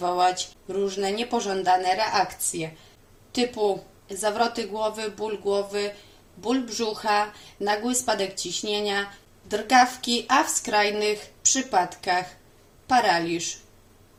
różne niepożądane reakcje typu zawroty głowy, ból brzucha, nagły spadek ciśnienia, drgawki, a w skrajnych przypadkach paraliż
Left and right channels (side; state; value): both; identical; correlation 1.00